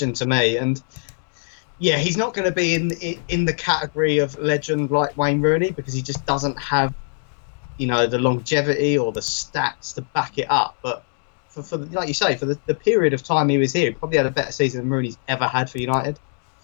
to me. And yeah, he's not going to be in the category of legend like Wayne Rooney because he just doesn't have, the longevity or the stats to back it up. But for like you say, for the period of time he was here, he probably had a better season than Rooney's ever had for United.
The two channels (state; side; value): silent; right; 63 dB below the other